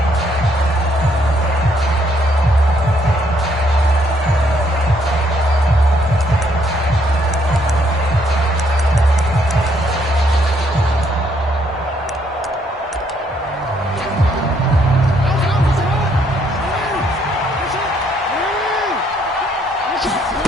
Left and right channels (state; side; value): normal; both; correlation 0.70